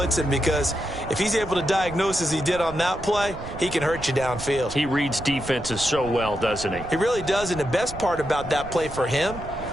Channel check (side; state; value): right; noise; rumble, 12 dB below the sound